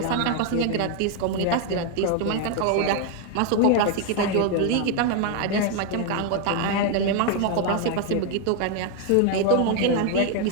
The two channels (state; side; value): different; both; correlation 0.01